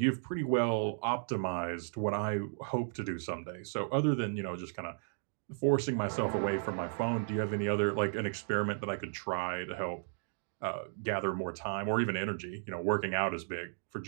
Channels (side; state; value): left; silent; digital silence